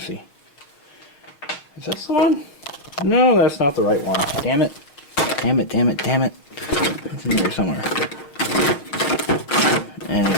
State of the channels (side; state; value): right; late; 6.6 ms